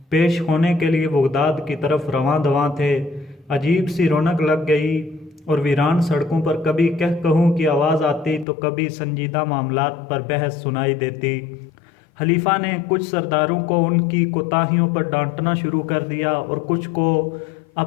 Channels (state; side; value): drops out; right; at 8.5 s